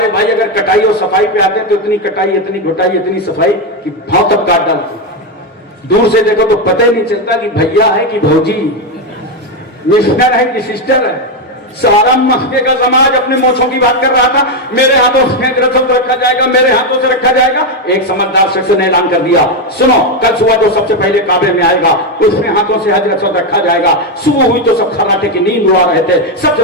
بھائی اگر کٹائی اور صفائی پہ آتے ہیں تو اتنی کٹائی اتنی گھٹائی اتنی صفائی کہ بھاؤ تک کاٹ ڈالتے، دور سے دیکھو تو پتہ ہی نہیں چلتا کہ بھیا ہے کہ بھوجی، مسٹر ہے کہ سسٹر ہے۔ سارا مکے کا سماج اپنے موچھوں کی بات کر رہا تھا، میرے ہاتھوں سے رسم رکھا جائے گا، میرے ہاتھوں سے رکھا جائے گا۔ ایک سمجھدار شخص نے اعلان کر دیا، سنو کل صبح جو سب سے پہلے کعبے میں آئے گا اس میں ہاتھوں سے حج رسم رکھا جائے گا۔ صبح ہوئی تو سب خراٹے کی نیند اڑا رہے تھے، سب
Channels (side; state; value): both; normal; correlation 0.07